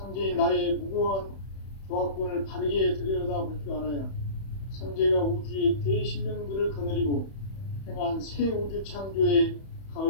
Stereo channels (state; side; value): late; right; 31 ms